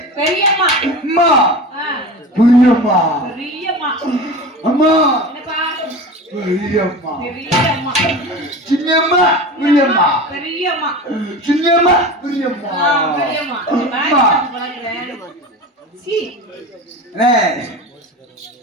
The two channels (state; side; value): normal; both; correlation 0.31